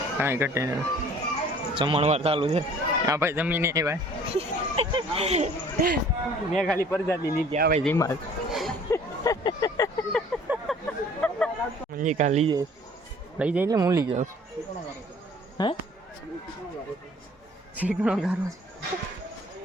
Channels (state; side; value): normal; both; correlation 0.52